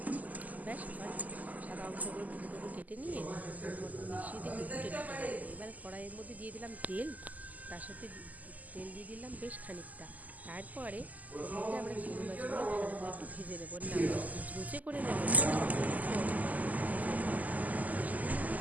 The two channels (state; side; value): late; left; 0.079 ms